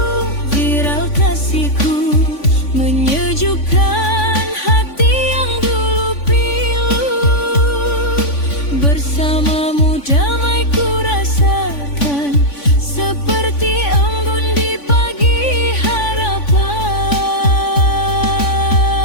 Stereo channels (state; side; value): late; right; 3.5 ms